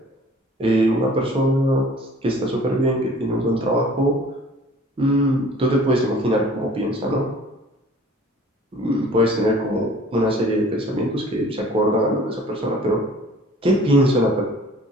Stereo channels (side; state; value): both; normal; correlation 0.49